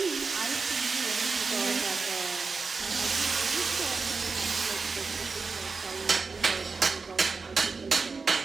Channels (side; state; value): left; quieter; 4.5 dB